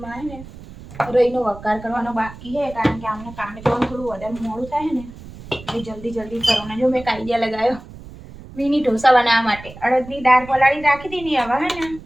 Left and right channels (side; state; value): right; noise; rumble, 16 dB below the sound